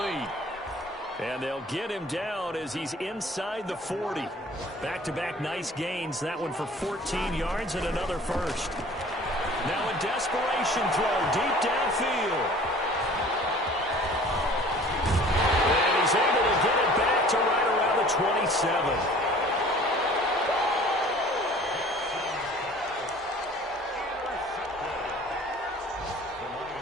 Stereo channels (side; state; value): both; normal; correlation 0.48